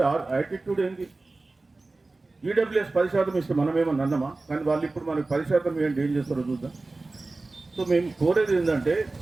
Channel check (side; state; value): left; quieter; 3.3 dB